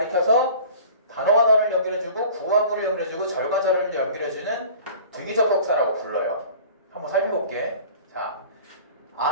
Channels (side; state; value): both; inverted; correlation -0.44